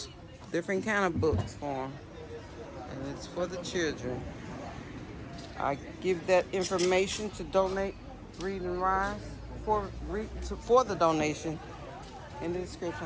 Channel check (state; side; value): identical; both; correlation 1.00